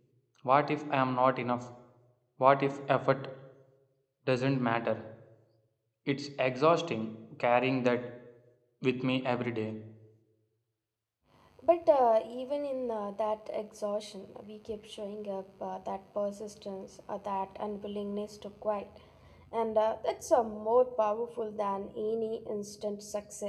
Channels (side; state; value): both; identical; correlation 1.00